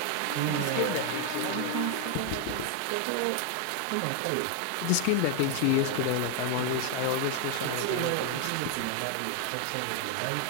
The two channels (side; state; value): both; different; correlation 0.01